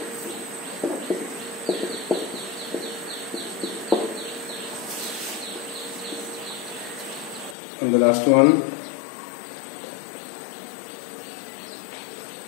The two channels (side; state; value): right; drops out; at 7.6 s